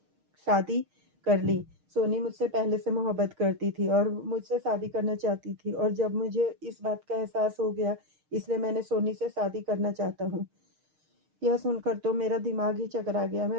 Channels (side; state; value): left; late; 6.5 ms